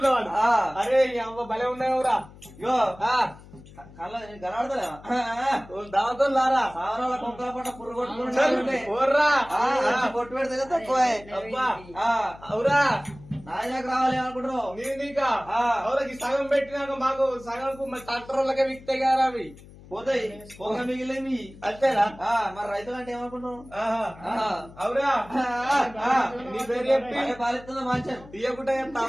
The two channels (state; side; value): noise; left; hum, 20 dB below the sound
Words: అరే ఈ అవ్వ భలే ఉన్నావురా యో కళ్ళ కనబడతలేవా దావతో లారా సావరాల కొంకల పట్ట పుర్రు కొట్టుకుంటే ఓర్రా కొట్టు పెడితే తక్కువ అబ్బా అవురా నాయనకు రావాలి అనుకుంటున్నావు నీకా అవురకి సగం పెట్టినాక మాకు సగంకు మరి ట్రాక్టర్ వాళ్ళకే విక్తాయి కదా అవి పోతాయి పొగ మిగిలేమి అంతేనా మరి రైతులు అంటే ఏమనుకుంటున్నావు అవురా నీ పేరు చెప్పి పాలిస్తుందా మంచి తీయకుండా చెప్తా